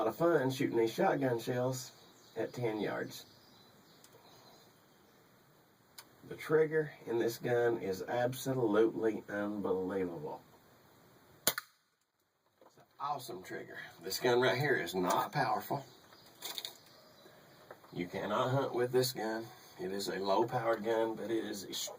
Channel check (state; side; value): identical; both; correlation 1.00